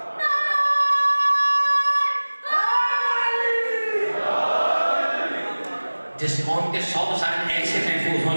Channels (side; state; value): both; inverted; correlation -1.00